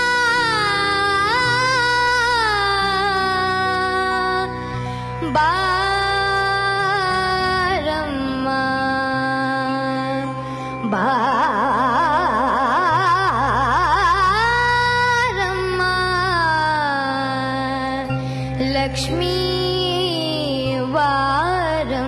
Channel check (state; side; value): identical; both; correlation 1.00